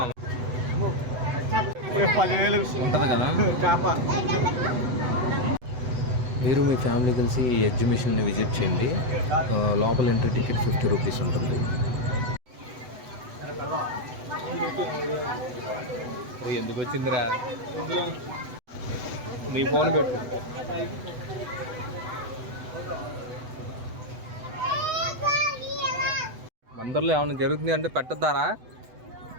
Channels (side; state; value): left; late; 8.0 ms